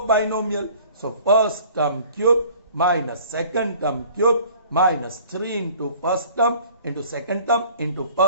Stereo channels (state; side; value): inverted; both; correlation -0.51